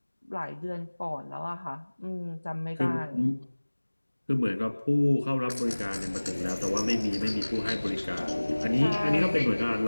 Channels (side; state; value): both; inverted; correlation -1.00